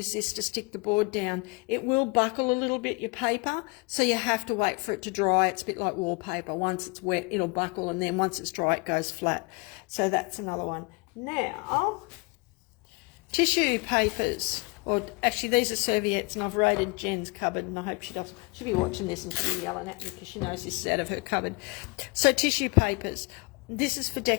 this to stick the board down. It will buckle a little bit, your paper, so you have to wait for it to dry. It's a bit like wallpaper. Once it's wet, it'll buckle, and then once it's dry, it goes flat. So that's another one. Now, tissue papers, or actually these are serviettes, and I've raided Jen's cupboard, and I hope she'll be watching this and she'll be yelling at me because she knows this is out of her cupboard. So tissue papers. This is for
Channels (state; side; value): quieter; right; 28.7 dB